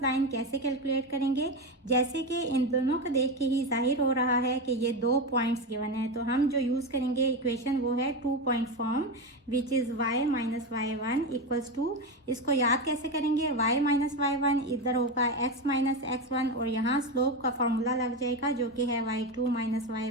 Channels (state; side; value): normal; both; correlation 0.15